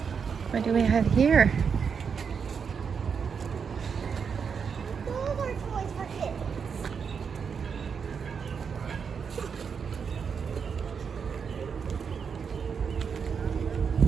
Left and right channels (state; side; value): quieter; left; 6.3 dB